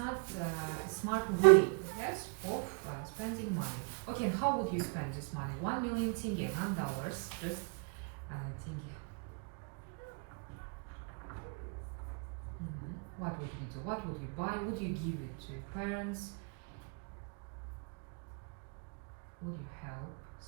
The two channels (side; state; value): left; quieter; 35.8 dB